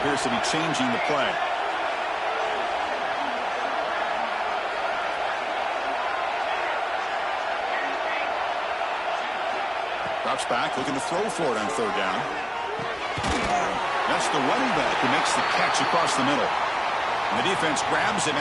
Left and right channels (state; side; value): identical; both; correlation 1.00